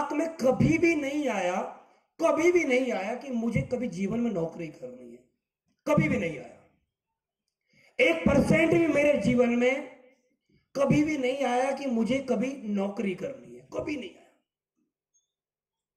में कभी भी नहीं आया कि मुझे कभी जीवन में नौकरी करनी है, कभी भी नहीं आया। 1% भी मेरे जीवन में कभी भी नहीं आया कि मुझे कभी नौकरी करनी है, कभी नहीं आया।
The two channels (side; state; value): both; identical; correlation 1.00